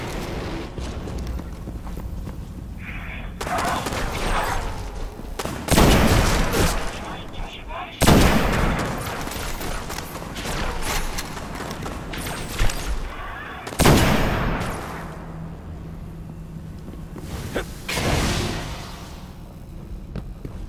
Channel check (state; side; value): identical; both; correlation 1.00